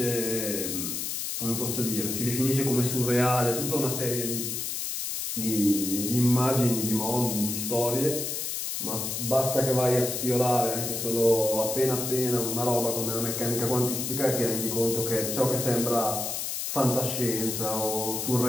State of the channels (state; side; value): noise; left; hiss, 3 dB below the sound